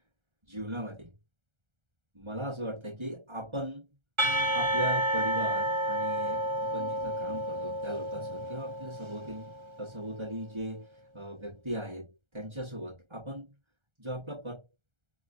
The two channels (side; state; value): left; late; 1.3 ms